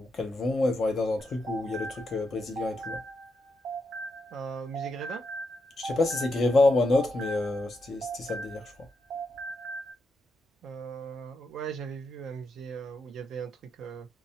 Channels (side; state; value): both; normal; correlation 0.83